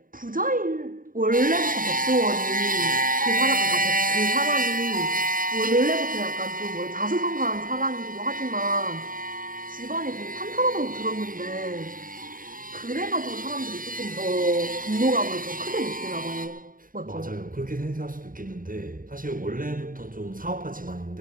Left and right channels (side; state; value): left; late; 0.40 ms